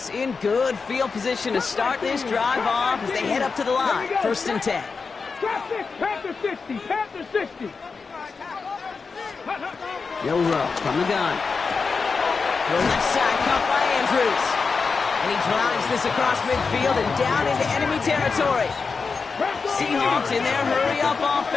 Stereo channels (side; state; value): right; quieter; 4.8 dB